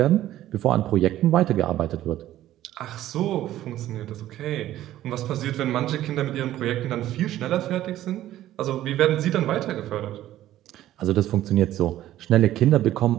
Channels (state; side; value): quieter; left; 13.6 dB